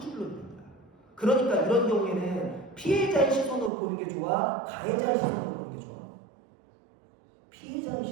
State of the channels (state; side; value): drops out; left; at 3.7 s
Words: 있는 거야. 그러니까 이런 경우에는 피해자의 시선으로 보는 게 좋아? 가해자의 시선으로 보는 게 좋아? 피해자의